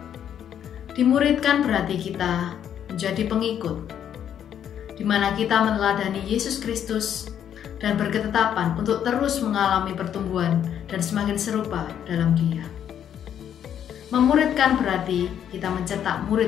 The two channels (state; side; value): quieter; right; 9.4 dB